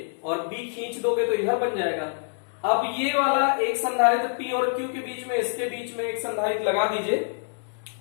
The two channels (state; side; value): silent; right; digital silence